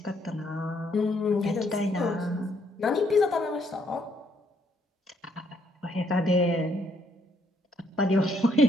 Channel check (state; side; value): normal; both; correlation 0.70